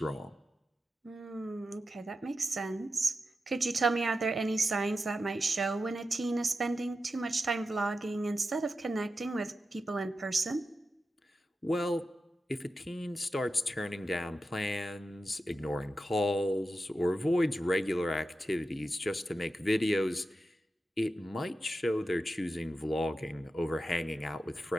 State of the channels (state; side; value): normal; both; correlation 0.91